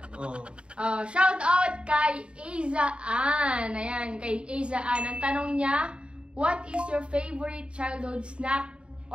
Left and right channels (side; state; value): left; late; 0.055 ms